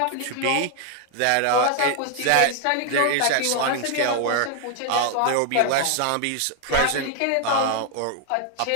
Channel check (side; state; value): both; different; correlation 0.00